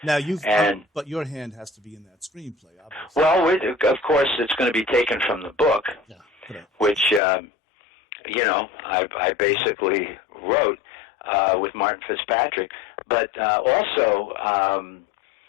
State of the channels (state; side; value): drops out; right; at 7.2 s